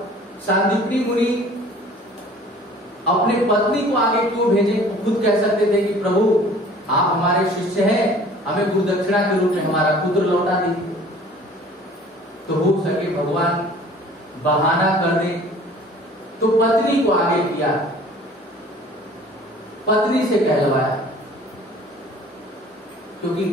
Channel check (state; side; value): normal; both; correlation 0.49